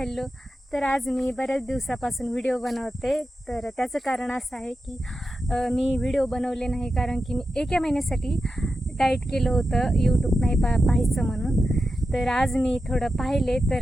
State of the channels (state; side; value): normal; both; correlation 0.90